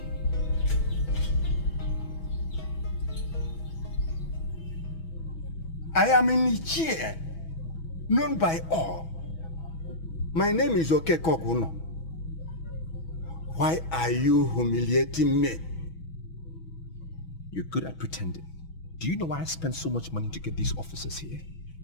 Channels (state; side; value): late; right; 6.1 ms